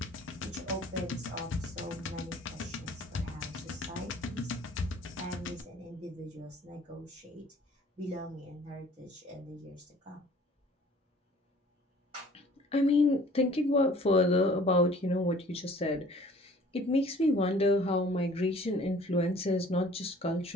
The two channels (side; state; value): both; normal; correlation 0.52